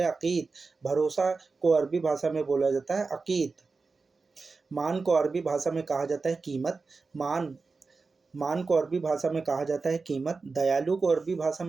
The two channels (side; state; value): left; quieter; 4.3 dB